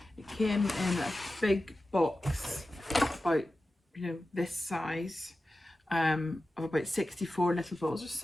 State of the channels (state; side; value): normal; both; correlation 0.94